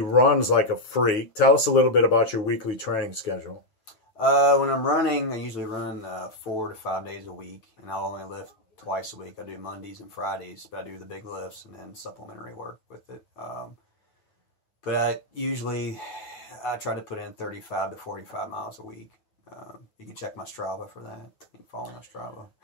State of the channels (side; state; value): right; late; 9.4 ms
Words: runs like a freak. Tell us a little bit about your weekly training schedule. When I'm running, I usually run 4 to 5 days a week, and I'll only lift twice a week. I do Mondays and Fridays, but I do the big lifts and then supplementary work with it. But I try to put in 35 to 45 miles a week. You can check my Strava for that. You can follow my Strava.